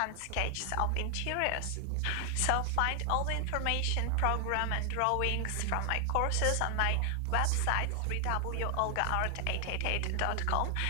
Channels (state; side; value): different; both; correlation 0.00